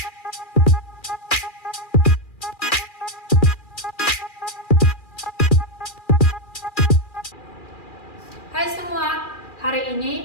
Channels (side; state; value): right; late; 2.4 ms